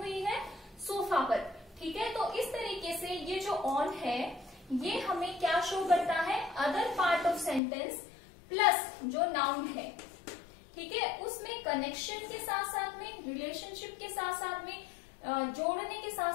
है, सोफा पर. ठीक है, तो इस तरीके से ये जो ऑन है ये हमें क्या शो करता है, other part of sentence plus जो नाउन है, ठीक है, उसमें कनेक्शन के साथ साथ में, रिलेशनशिप के साथ साथ में, जोड़ने के साथ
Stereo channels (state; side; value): drops out; right; at 7.6 s